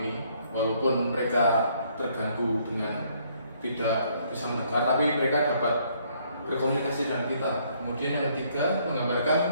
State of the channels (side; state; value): both; inverted; correlation -0.67